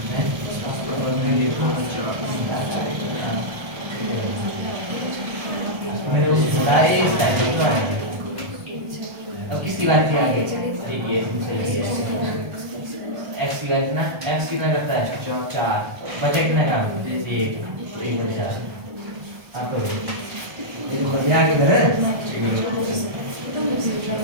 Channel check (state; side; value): late; left; 1.3 ms